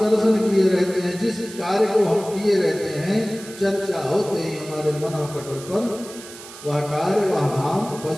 दर्शन किए रहते हैं, जिस कार्य को हम किए रहते हैं, चर्चा होते ही हमारे मन पटल पर वह कार्य, वह धाम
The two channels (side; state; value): right; noise; hiss, 16 dB below the sound